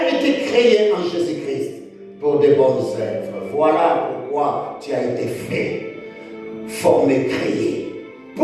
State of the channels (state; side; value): identical; both; correlation 1.00